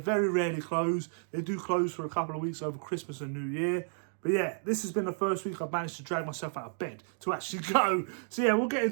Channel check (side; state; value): left; silent; digital silence